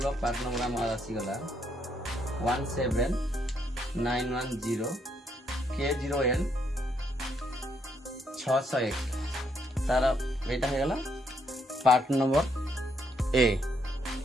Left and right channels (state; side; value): normal; both; correlation 0.74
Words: part number आम आसीगला 17910 K0N 601 तार एटा हेगला पार्ट नंबर ए